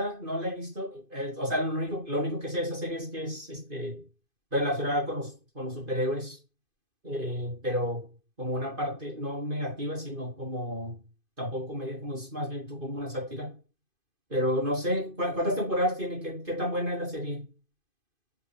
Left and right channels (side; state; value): left; late; 2.5 ms